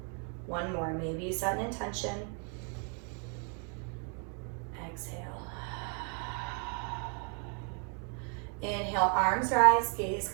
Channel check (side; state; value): left; quieter; 39.4 dB